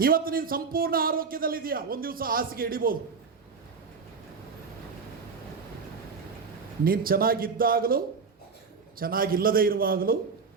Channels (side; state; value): left; quieter; 5.2 dB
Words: ಇವತ್ತು ನೀನು ಸಂಪೂರ್ಣ ಆರೋಗ್ಯದಲ್ಲಿದೆಯಾ, ಒಂದು ದಿವಸ ಹಾಸಿಗೆ ಹಿಡಿಬೋದು. ನೀನು ಚೆನ್ನಾಗಿದ್ದಾಗಲೂ ಚೆನ್ನಾಗಿಲ್ಲದೆ ಇರುವಾಗಲೂ